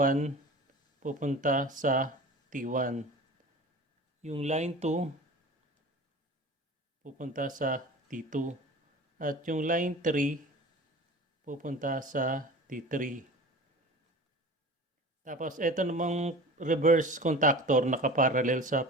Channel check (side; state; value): both; normal; correlation 0.37